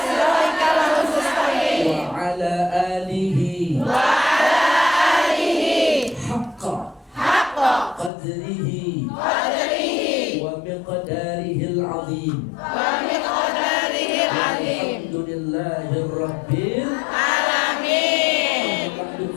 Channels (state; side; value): drops out; right; at 8.1 s